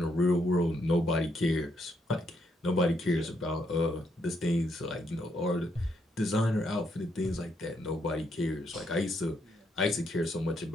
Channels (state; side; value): normal; both; correlation 0.76